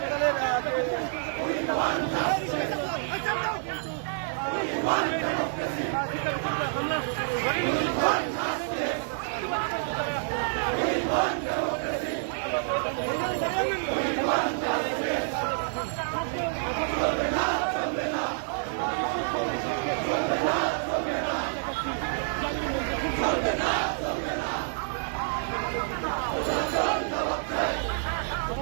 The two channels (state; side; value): silent; left; digital silence